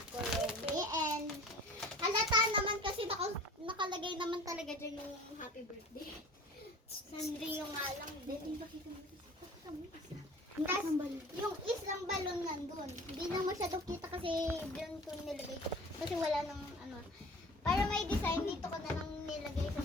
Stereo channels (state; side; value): normal; both; correlation 0.42